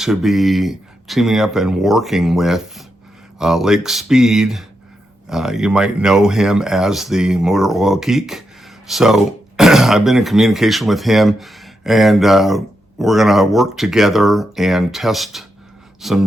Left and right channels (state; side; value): normal; both; correlation 0.84